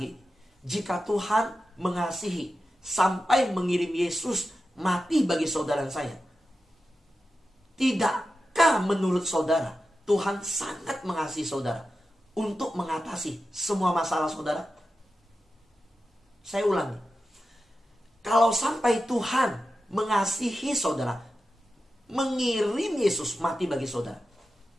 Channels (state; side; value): normal; both; correlation 0.91